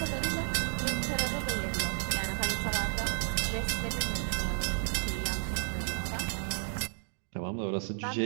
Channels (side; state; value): left; silent; 56 dB below the other